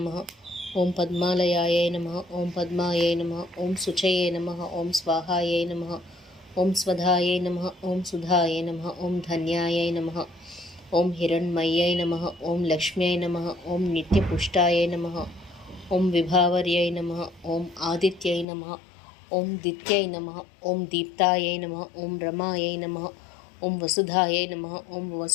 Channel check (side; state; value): right; drops out; at 18.4 s